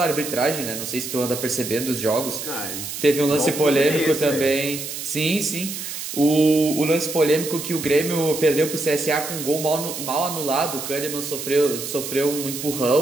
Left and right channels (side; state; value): right; noise; hiss, 7 dB below the sound